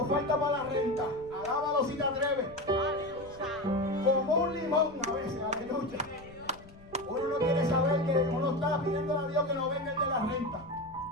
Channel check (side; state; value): left; noise; rumble, 21 dB below the sound